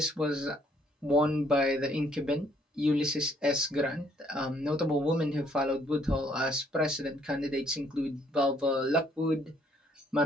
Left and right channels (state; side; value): normal; both; correlation 0.66